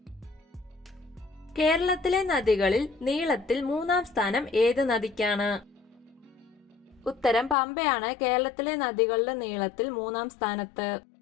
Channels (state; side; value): drops out; right; at 7.6 s